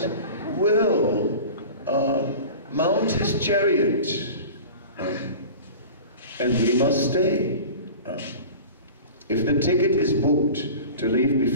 will mount his chariot, and we must stay. If the ticket is booked to leave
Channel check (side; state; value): both; inverted; correlation -0.37